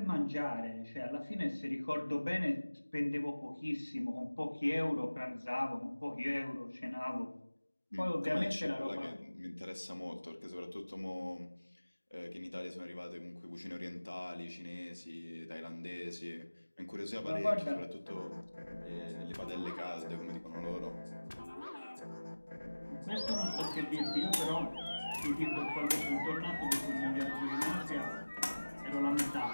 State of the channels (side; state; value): both; inverted; correlation -1.00